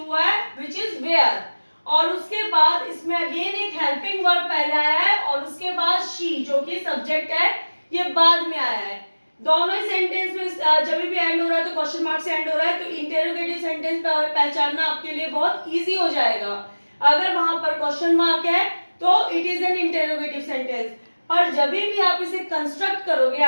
हुआ है विच इज वेयर, और उसके बाद इसमें अगेन एक हेल्पिंग वर्ब पहले आया है और उसके बाद शी जो कि सब्जेक्ट है ये बाद में आया है। दोनों ही सेंटेंस में जब भी एंड हो रहा है तो क्वेश्चन मार्क से एंड हो रहा है, तो इंटरोगेटिव सेंटेंस पहचानना आपके लिए बहुत इजी हो जाएगा। अगर वहां पर क्वेश्चन मार्क है तो it is an interrogative sentence, और जब भी आप इसे कंस्ट्रक्ट करोगे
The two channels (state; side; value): inverted; both; correlation -1.00